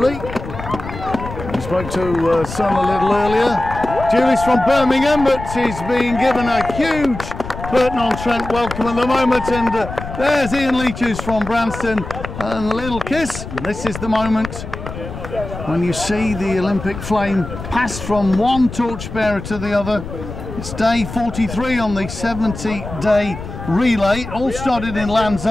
We spoke to son a little earlier. Julie's from Birmingham, but she's being given a huge Burton-on-Trent welcome at the moment. And there's Ian Leech, who's from Branston, and a little kiss. And this is the moment when you see the Olympic flame pass from one torchbearer to the other. It's day 43 on the 70-day relay. It all started in Land's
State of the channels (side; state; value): left; noise; rumble, 10 dB below the sound